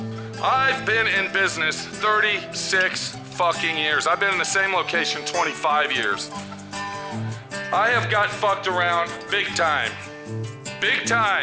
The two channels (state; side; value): identical; both; correlation 1.00